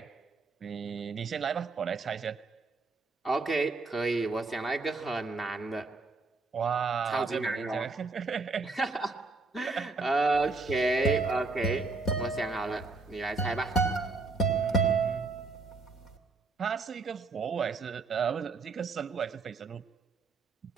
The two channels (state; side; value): quieter; left; 3.8 dB